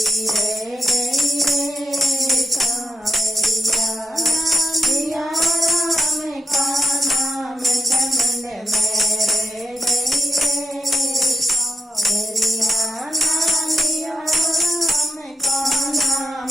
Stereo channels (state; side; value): normal; both; correlation 0.85